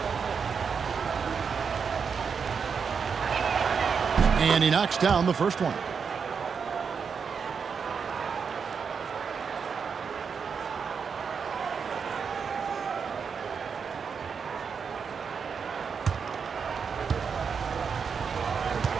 And he knocks down the first one.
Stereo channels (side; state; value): left; quieter; 6.1 dB